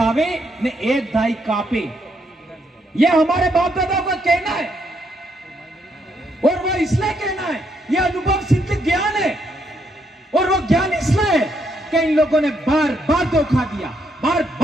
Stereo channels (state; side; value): normal; both; correlation 0.75